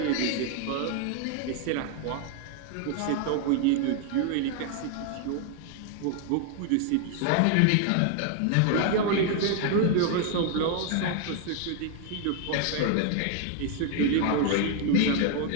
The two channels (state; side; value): different; both; correlation 0.00